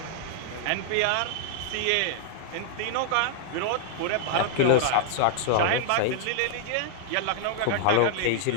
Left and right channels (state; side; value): different; both; correlation -0.01